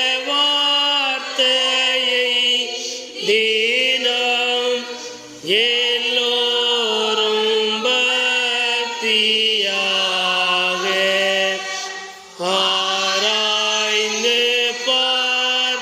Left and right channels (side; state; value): both; identical; correlation 1.00